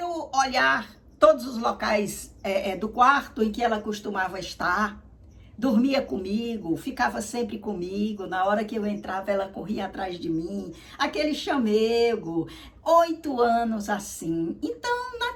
olhar todos os locais do quarto em que ela costumava estar, dormia comigo, ficava sempre comigo, na hora que eu entrava ela corria atrás de mim, aquele chamego, 8 anos assim. Então,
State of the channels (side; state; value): both; identical; correlation 1.00